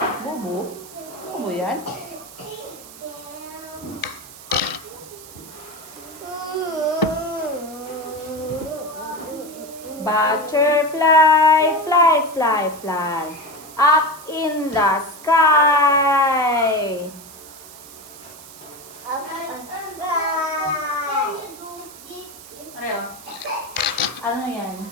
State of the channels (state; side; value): noise; right; hiss, 17 dB below the sound